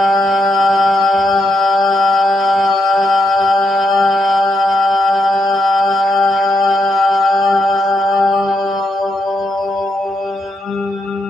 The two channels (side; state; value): both; normal; correlation 0.81